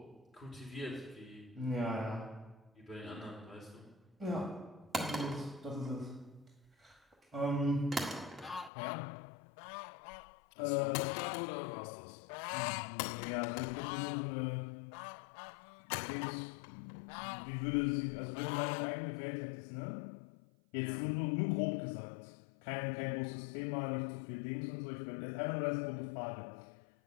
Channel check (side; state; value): right; drops out; at 8.7 s